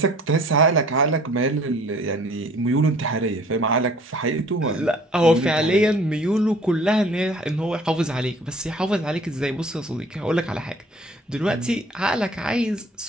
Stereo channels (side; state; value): both; normal; correlation 0.52